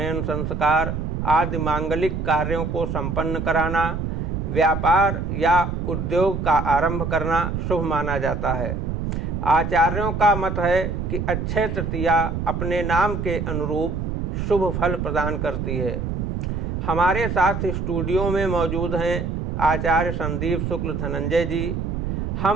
संस्कार आदि मांगलिक कार्यों को संपन्न कराना, व्यापार या उद्योग का आरंभ करना शुभ माना जाता है। आचार्यों का मत है कि अक्षय तृतीया अपने नाम के अनुरूप शुभ फल प्रदान करती है। हमारे साथ स्टूडियो में मौजूद हैं आचार्य संदीप शुक्ल धनंजय जी।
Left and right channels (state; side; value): noise; right; rumble, 2 dB below the sound